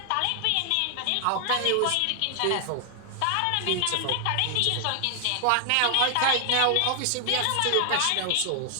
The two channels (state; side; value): different; both; correlation 0.00